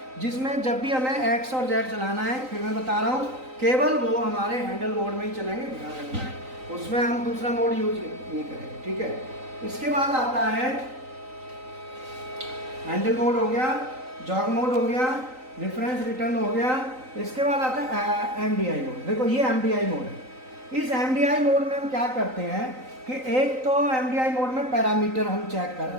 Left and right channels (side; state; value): left; late; 3.9 ms